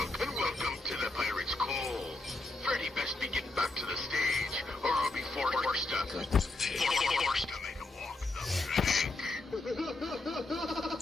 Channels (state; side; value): quieter; right; 3.0 dB